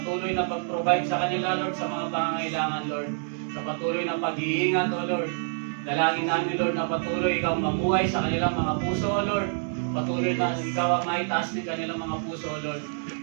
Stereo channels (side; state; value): left; silent; digital silence